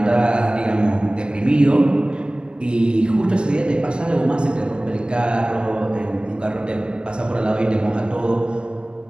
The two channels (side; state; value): left; late; 0.055 ms